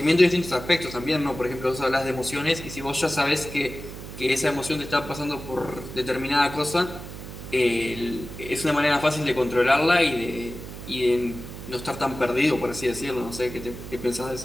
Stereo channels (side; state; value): right; noise; hum, 11 dB below the sound